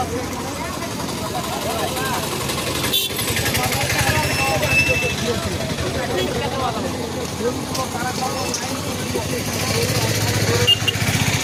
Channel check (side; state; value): both; identical; correlation 1.00